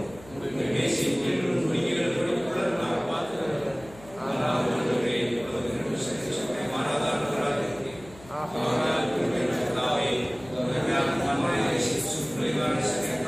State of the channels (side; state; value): left; noise; hum, 21 dB below the sound